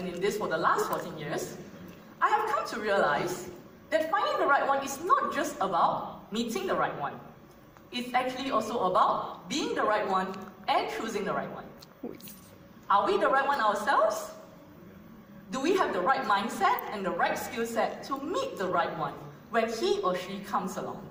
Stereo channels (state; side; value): identical; both; correlation 1.00